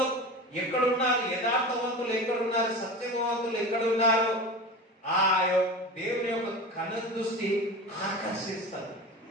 ఎక్కడున్నారు, యథార్థవంతులు ఎక్కడున్నారు, సత్యవంతులు ఎక్కడున్నారు, ఆ దేవుని యొక్క కనుదృష్టి ఆకర్షిస్తారు.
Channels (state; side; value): normal; both; correlation 0.30